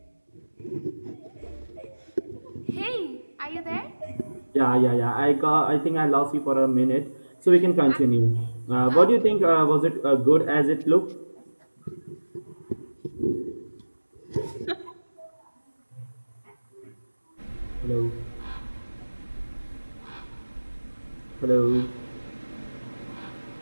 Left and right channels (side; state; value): both; inverted; correlation -1.00